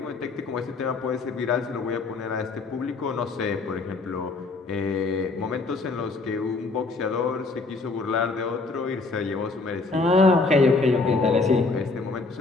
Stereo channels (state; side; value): quieter; right; 3.8 dB